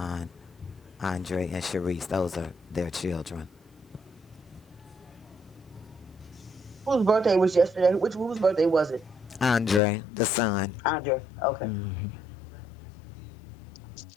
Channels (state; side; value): drops out; right; at 9.8 s